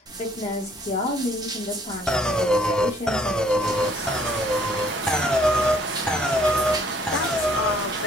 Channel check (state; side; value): normal; both; correlation 0.61